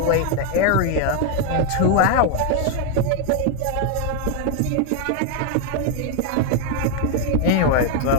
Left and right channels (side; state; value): both; different; correlation 0.01